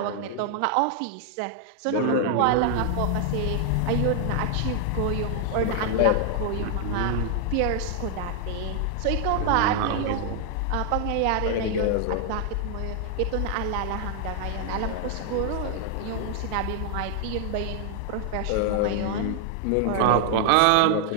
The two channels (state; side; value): different; both; correlation 0.00